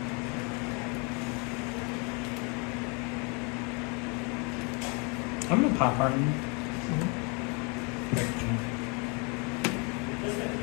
I'm gonna pop Harden.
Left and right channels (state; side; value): quieter; right; 33.0 dB